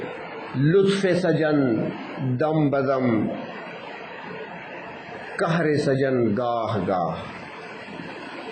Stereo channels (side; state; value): both; identical; correlation 1.00